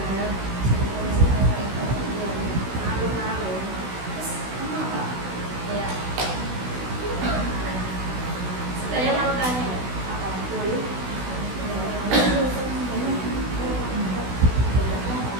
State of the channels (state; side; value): late; left; 16 ms